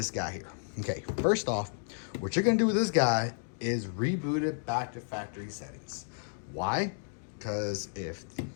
guy here. Okay, first off, what you're gonna do with this guy is reboot it back to factory settings. Why? Because if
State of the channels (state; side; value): silent; right; digital silence